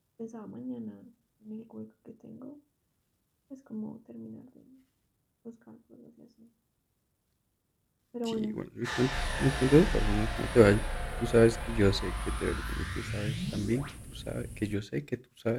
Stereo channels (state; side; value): identical; both; correlation 1.00